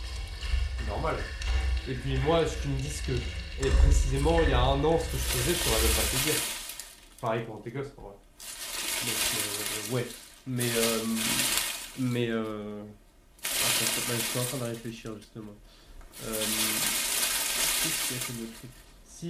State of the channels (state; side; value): identical; both; correlation 1.00